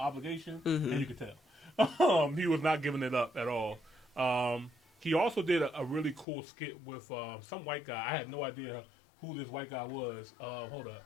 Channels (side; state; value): right; drops out; at 6.2 s